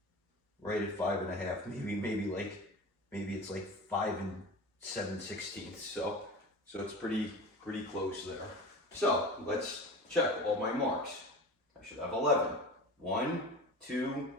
right at 5 1/2. Maybe it's like 5 7/16. So it's pretty close there. So let's check all my marks. I should have 11. 1, 2,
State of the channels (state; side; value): normal; both; correlation 0.33